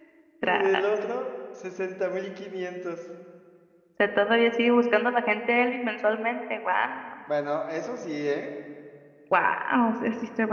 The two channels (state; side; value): identical; both; correlation 1.00